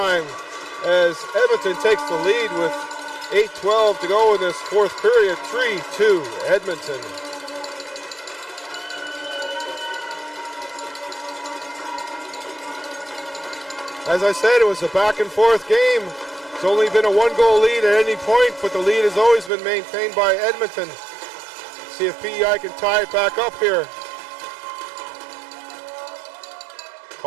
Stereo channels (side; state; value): left; drops out; at 19.5 s